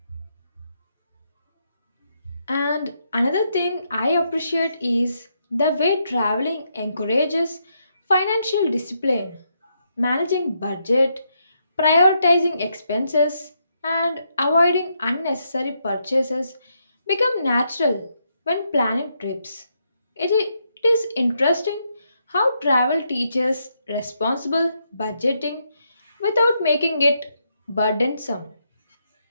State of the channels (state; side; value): inverted; both; correlation -0.79